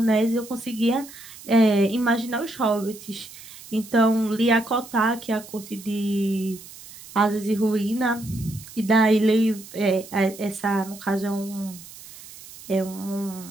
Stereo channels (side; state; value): right; noise; hiss, 17 dB below the sound